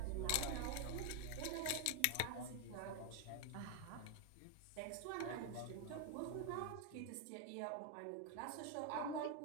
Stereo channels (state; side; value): different; both; correlation 0.01